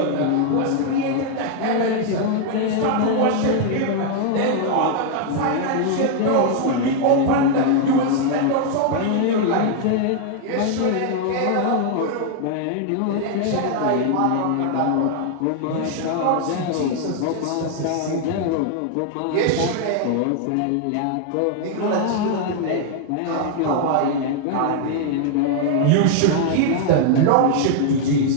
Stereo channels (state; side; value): different; both; correlation 0.00